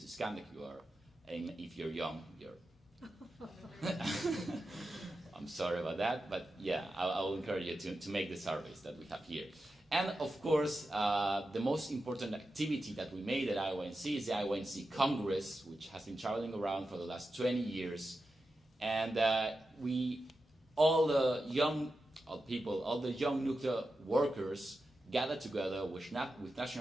scan the QR, and if you're young, I'm sorry about that, but yeah, I will encourage you to make the surveys that we have here. And of course, the most important activity that we made at IYNC is the IYNC Congress, which has been traveling around for the last 20 years. And all the young people, all the young nuclear workers gathered together with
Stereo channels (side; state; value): both; normal; correlation 0.91